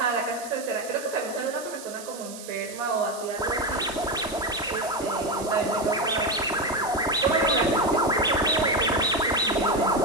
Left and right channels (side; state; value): right; noise; hiss, 14 dB below the sound